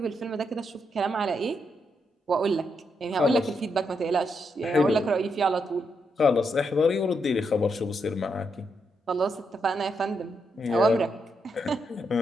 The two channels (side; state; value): both; normal; correlation 0.80